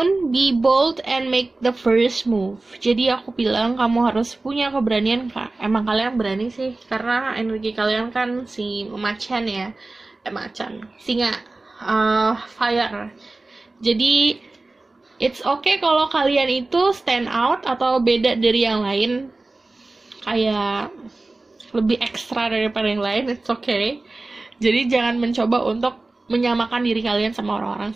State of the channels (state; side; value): quieter; left; 3.2 dB